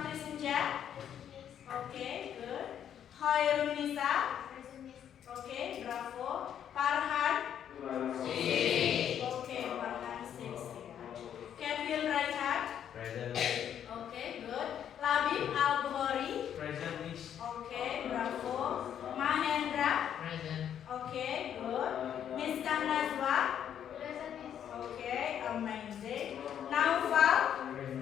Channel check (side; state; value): right; quieter; 9.4 dB